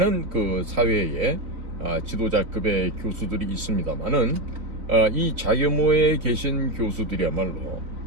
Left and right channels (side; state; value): left; late; 3.8 ms